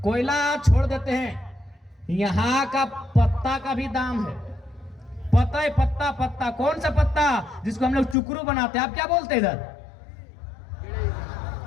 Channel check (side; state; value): right; drops out; at 8.2 s